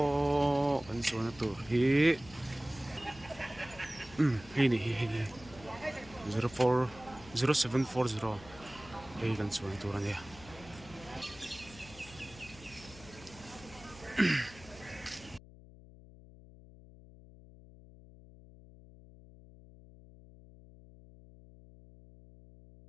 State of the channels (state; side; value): noise; left; hum, 20 dB below the sound